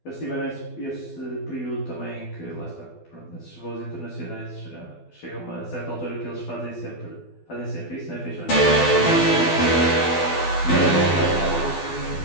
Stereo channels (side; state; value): right; late; 12 ms